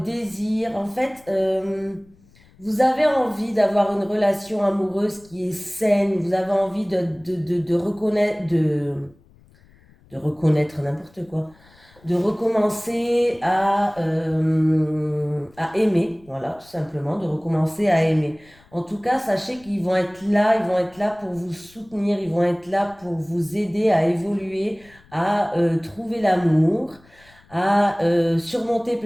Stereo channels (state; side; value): noise; left; rumble, 28 dB below the sound